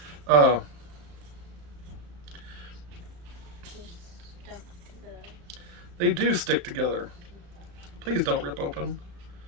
They do stick together. Please don't rip open.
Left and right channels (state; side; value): late; left; 35 ms